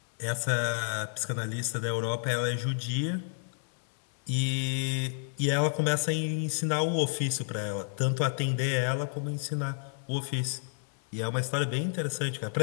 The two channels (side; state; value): right; silent; 57 dB below the other